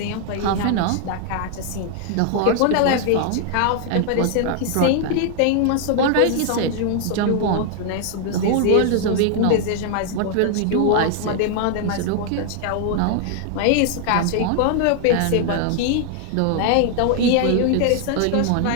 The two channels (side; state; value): both; different; correlation 0.00